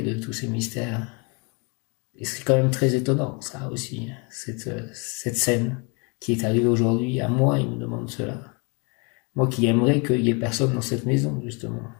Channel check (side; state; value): right; quieter; 31.8 dB